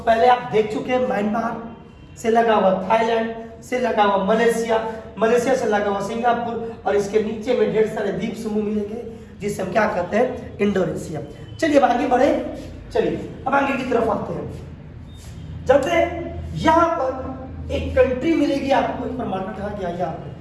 आप देख चुके हैं म्यांमार से लगा हुआ थाईलैंड, से लगा हुआ मलेशिया, मलेशिया से लगा हुआ सिंगापुर, और इसके नीचे में ढेर सारे द्वीप समूह मिलेंगे जिसे हम क्या कहते हैं? इंडोनेशिया। चलिए अब आगे बढ़े। चलिए अब आगे की तरफ आते हैं। चलते हैं, यहाँ पर एक कंट्री मिलेगी आपको, एक मार्कर कहा गया यहाँ पर।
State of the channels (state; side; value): identical; both; correlation 1.00